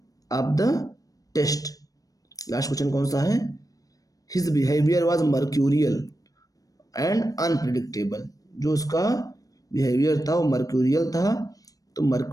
of the test. Last question कौन सा है? His behaviour was mercurial and unpredictable. जो उसका बिहेवियर था वो मर्क्यूरियल था। तो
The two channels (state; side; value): late; right; 0.17 ms